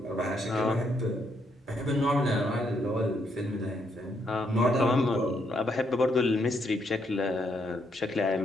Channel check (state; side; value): normal; both; correlation 0.75